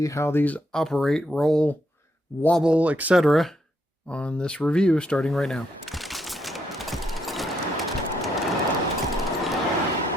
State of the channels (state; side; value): normal; both; correlation 0.77